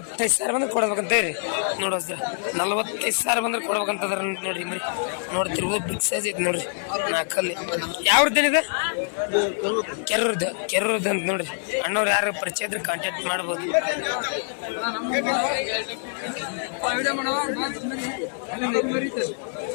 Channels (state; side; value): silent; right; digital silence